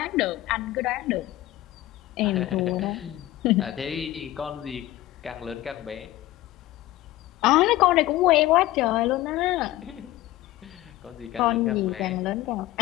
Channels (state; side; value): quieter; right; 16.0 dB